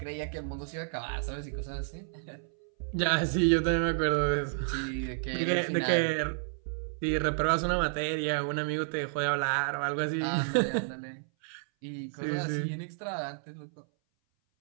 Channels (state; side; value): silent; left; 57 dB below the other